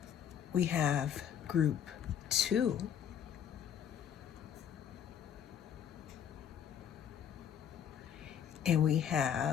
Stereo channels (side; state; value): right; quieter; 8.9 dB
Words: we have group two, and we